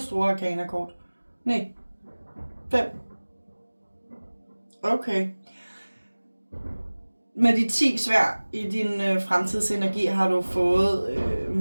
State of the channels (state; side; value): inverted; both; correlation -1.00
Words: store arkanakort. Nej, 5. Okay. Med de 10 sværd i din fremtidsenergi har du fået